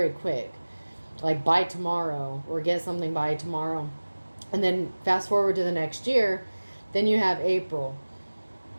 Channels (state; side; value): inverted; both; correlation -1.00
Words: quick, like by tomorrow, or get something by tomorrow. And then fast forward to the next year, then you have April,